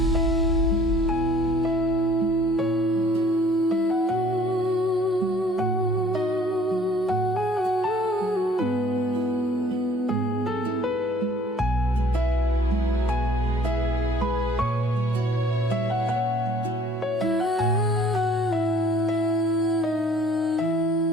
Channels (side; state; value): both; normal; correlation 0.55